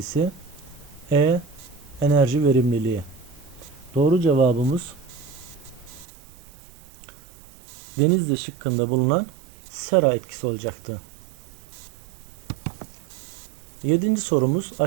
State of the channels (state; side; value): drops out; left; at 6.1 s